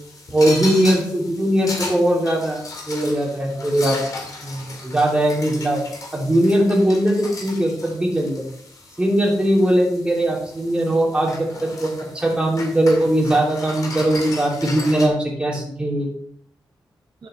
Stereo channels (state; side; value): normal; both; correlation 0.88